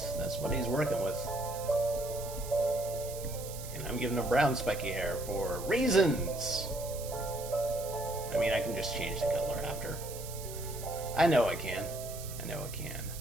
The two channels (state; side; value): noise; right; hiss, 12 dB below the sound